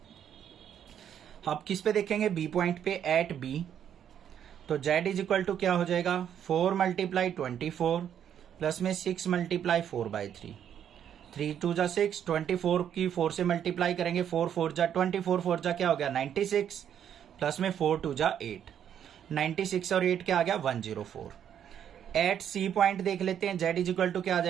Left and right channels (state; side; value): quieter; left; 9.3 dB